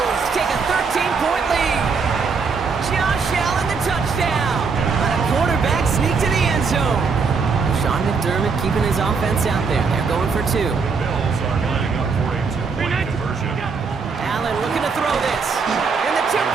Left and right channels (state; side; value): quieter; left; 5.1 dB